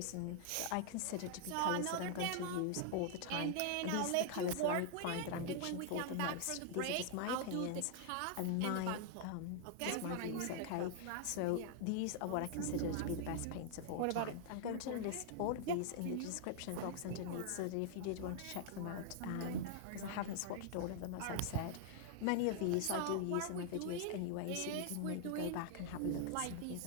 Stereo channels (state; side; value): different; both; correlation 0.00